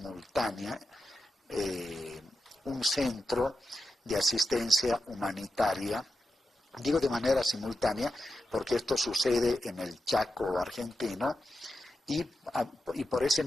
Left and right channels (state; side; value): normal; both; correlation 0.89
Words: un centro de asistencia humanitaria. Digo de manera simultánea porque esto sucede en el Chaco argentino y por ese